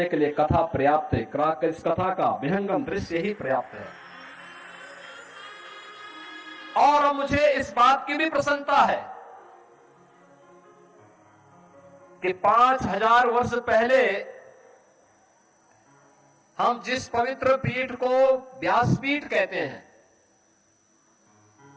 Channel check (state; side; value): identical; both; correlation 1.00